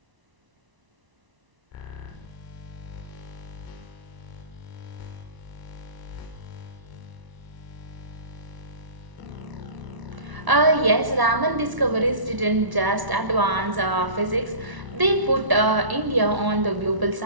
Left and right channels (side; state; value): left; late; 1.0 ms